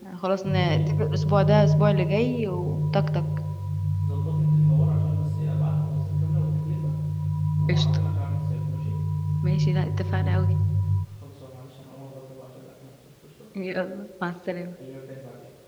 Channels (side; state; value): both; identical; correlation 1.00